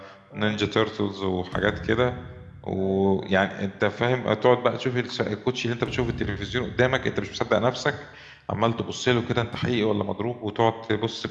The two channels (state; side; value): identical; both; correlation 1.00